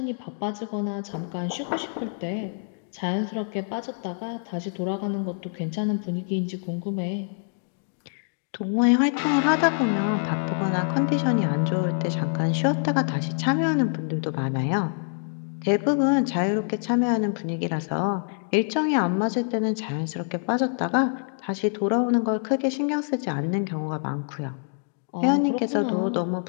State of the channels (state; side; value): silent; right; digital silence